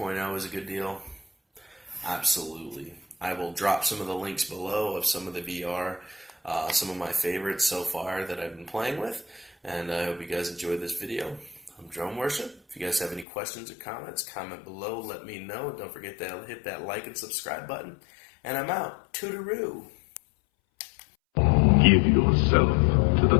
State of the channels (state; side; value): drops out; right; at 13.2 s